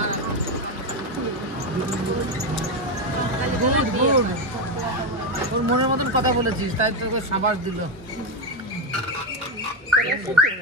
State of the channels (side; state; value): both; normal; correlation 0.11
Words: ওর মনের মতন কথা বলেছিস, তাই তোকে সাবাস দিল।